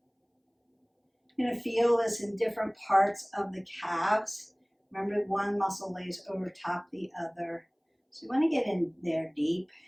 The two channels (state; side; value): identical; both; correlation 1.00